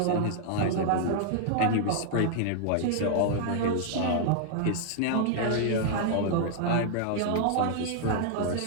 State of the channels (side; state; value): both; different; correlation -0.01